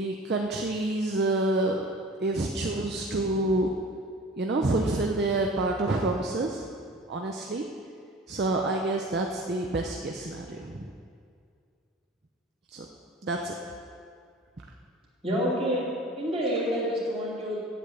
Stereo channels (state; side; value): normal; both; correlation 0.41